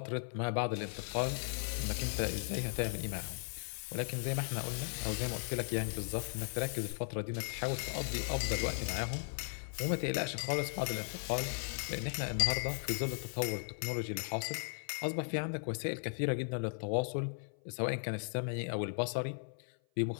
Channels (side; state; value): right; silent; 53 dB below the other